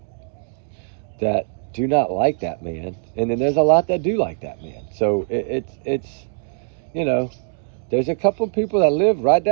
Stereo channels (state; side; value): silent; left; digital silence